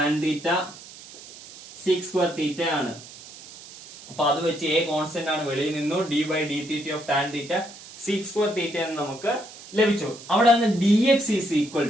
theta sec² theta ആണ്. അപ്പൊ അത് വെച്ച് a കോൺസ്റ്റന്റ് ആണ്, വെളിയിൽ നിന്നു d/d theta of tan theta sec² theta എന്ന് നമുക്ക് ലഭിച്ചു. അവിടെ നിന്ന് dx is equal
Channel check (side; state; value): right; noise; hiss, 17 dB below the sound